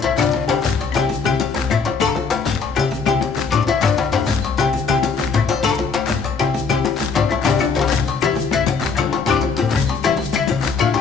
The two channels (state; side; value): quieter; right; 5.0 dB